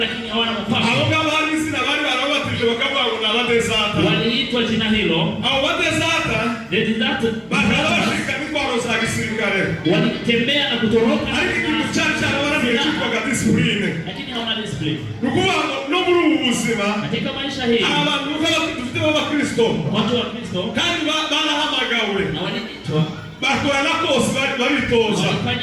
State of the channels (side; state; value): both; identical; correlation 1.00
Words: lakini hawana Abo mpango, ngabo hari izina bari barabatije bakavuga ngo ni abadezata. waliitwa jina hilo. Abo badezata bakaba bashika n'intwaro za gisirikare, walitembea na kutoroka, ariko ikintu cyari cyarabananiye cyitwaga disipurine. lakini hawana discipline Ni ukuvuga ngo no muri ubu buzima katika maisha hii. hari abantu dufite b'abakristo Watu wa Kristo kandi barahamagawe na waliitwa, bakora na kose baritoza,